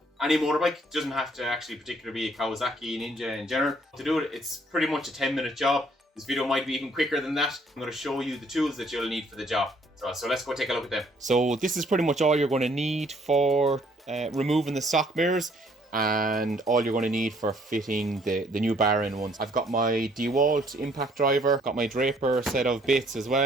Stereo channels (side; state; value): both; normal; correlation 0.63